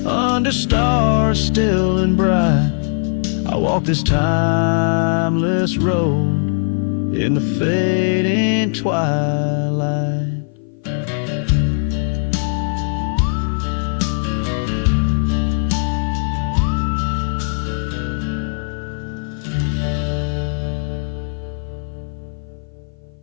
under stars still and bright, I walk this timeless road in the fading twilight.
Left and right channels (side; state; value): right; silent; 57 dB below the other